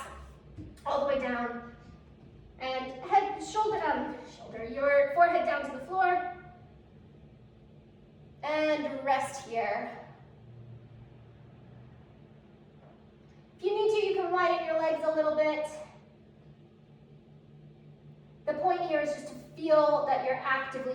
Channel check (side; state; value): both; identical; correlation 1.00